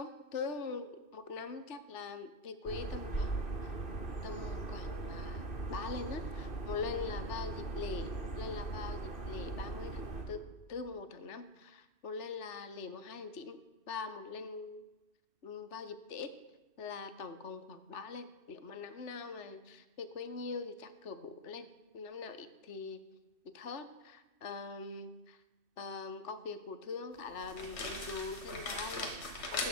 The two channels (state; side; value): late; right; 2.6 ms